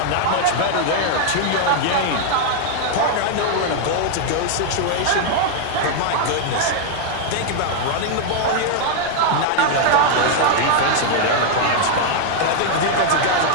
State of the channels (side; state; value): both; different; correlation 0.00